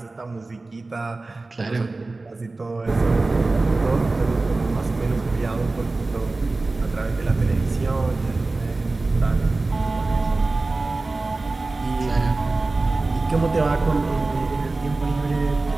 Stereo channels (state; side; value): quieter; left; 3.3 dB